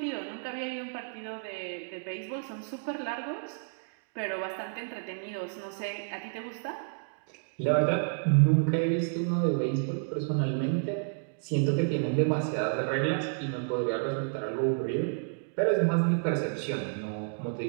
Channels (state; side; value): silent; left; digital silence